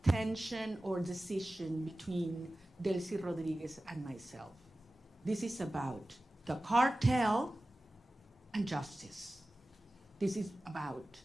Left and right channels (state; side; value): normal; both; correlation 0.96